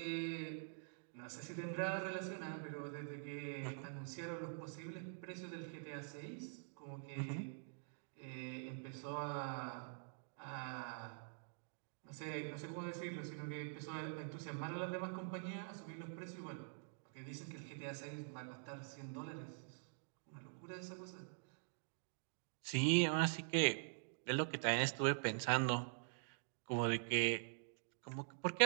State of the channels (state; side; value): silent; left; digital silence